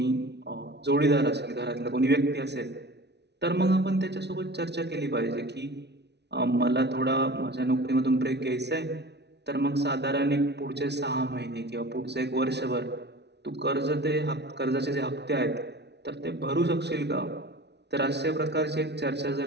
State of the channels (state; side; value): late; left; 0.50 ms